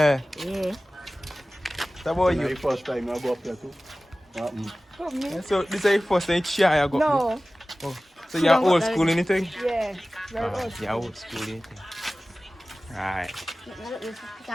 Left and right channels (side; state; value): both; normal; correlation 0.97